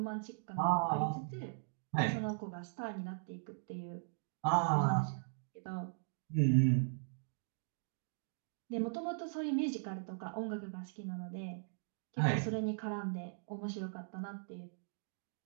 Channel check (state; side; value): silent; left; digital silence